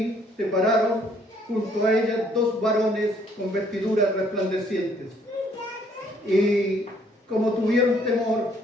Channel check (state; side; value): normal; both; correlation 0.64